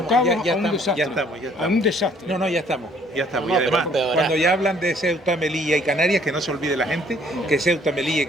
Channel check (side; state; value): both; normal; correlation 0.61